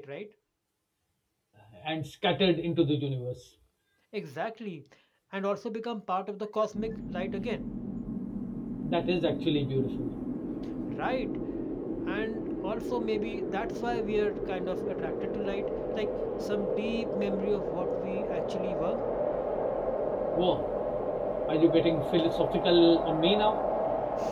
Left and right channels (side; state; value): both; identical; correlation 1.00